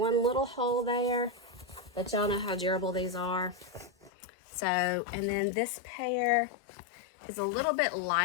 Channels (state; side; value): drops out; right; at 4.1 s